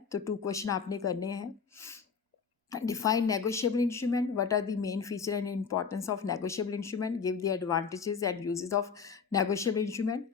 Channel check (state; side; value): quieter; right; 5.9 dB